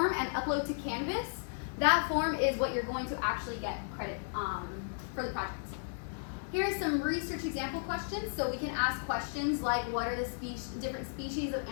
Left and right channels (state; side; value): silent; right; 55 dB below the other